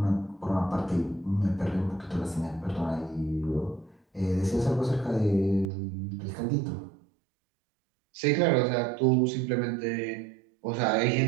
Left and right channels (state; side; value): drops out; left; at 5.7 s